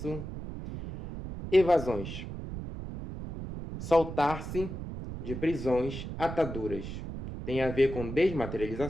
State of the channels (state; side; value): noise; right; rumble, 8 dB below the sound